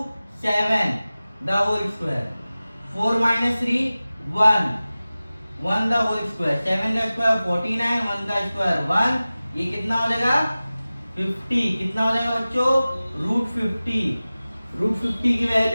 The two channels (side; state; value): both; inverted; correlation -0.97